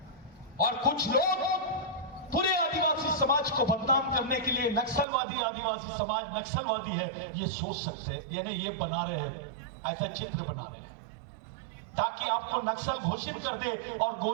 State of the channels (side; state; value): left; drops out; at 5.1 s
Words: और कुछ लोग पूरे आदिवासी समाज को बदनाम करने के लिए नक्सलवादी, आदिवासी समाज नक्सलवादी है, ये सोच सकते हैं, यानी ये बना रहे हैं, ऐसा चित्र बना रहे हैं ताकि आपको नक्सल घोषित कर दे और